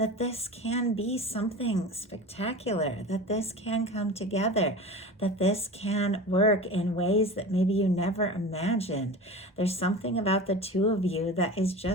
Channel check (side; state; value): both; normal; correlation 0.33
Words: this can be something spectacular, that this can come together, that this can work in ways that maybe you never imagined. There's something about the two of you that is